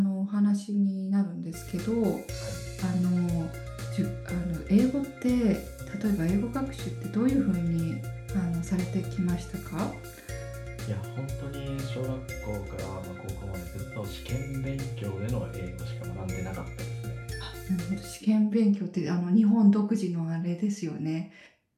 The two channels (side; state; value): both; identical; correlation 1.00